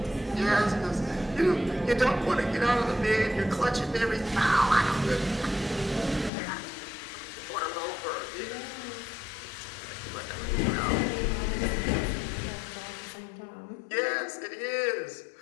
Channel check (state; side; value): drops out; right; at 6.3 s